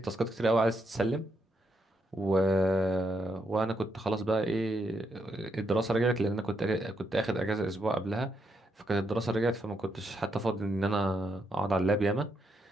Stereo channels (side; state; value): both; normal; correlation 0.79